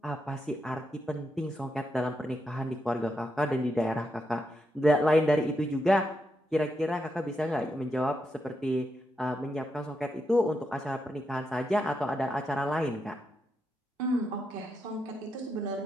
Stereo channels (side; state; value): both; normal; correlation 0.83